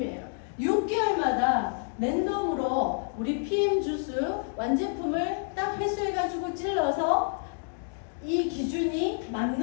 6개월마다 랜덤으로 우리 PM 주스 완제품을 딱 회수해가지고 찔러서 이 기준이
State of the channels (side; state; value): right; silent; 59 dB below the other